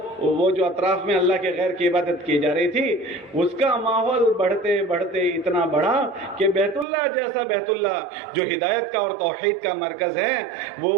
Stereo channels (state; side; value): drops out; left; at 6.9 s